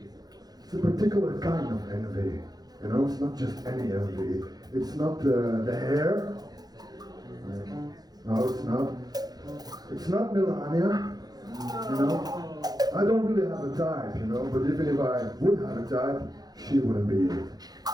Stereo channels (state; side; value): late; left; 0.19 ms